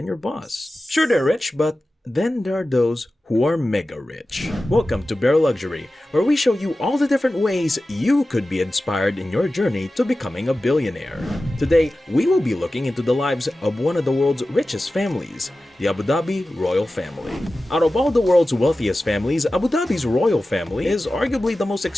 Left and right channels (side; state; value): both; normal; correlation 0.95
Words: your boss. Sure, they're rich, but then there are those who are mega rich. Welcome to Bare Luxury, where we show you all the different ways you could be inspired in your journey to becoming a billionaire. Today, we will be looking into the lives of one of the world's richest families, the Abu Dhabi Royal Family. Out of all the world's wealthiest families, Abu Dhabi's royal family is arguably the most